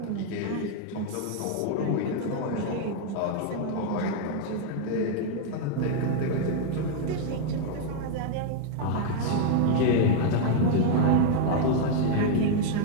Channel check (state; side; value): different; both; correlation 0.00